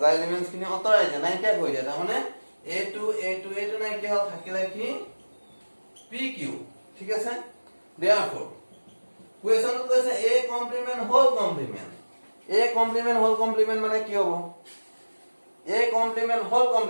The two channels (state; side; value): inverted; both; correlation -1.00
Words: elements খিনি অতৰাই যায় নাই কি হৈ যায় তাৰ মানে a2 নাই কি হল থাকিলে কি pq ঠিক আছে therefore question কৈছে a complement whole complement মানে কি হ'ব a complement whole